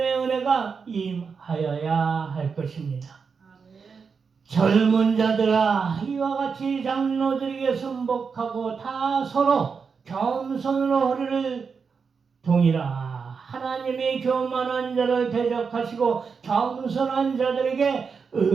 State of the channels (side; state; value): left; quieter; 5.6 dB